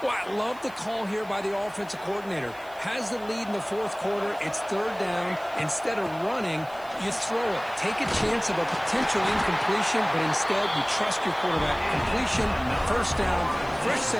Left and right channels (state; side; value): noise; right; hiss, 25 dB below the sound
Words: Well, I love the call here by the offensive coordinator. Has the lead in the fourth quarter. It's third down. Instead of running, you throw it. Take a chance of a potential incompletion, but instead you trust your quarterback. Completion, first down, fresh